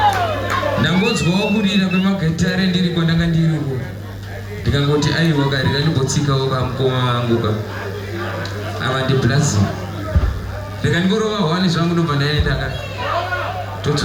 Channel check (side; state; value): both; identical; correlation 1.00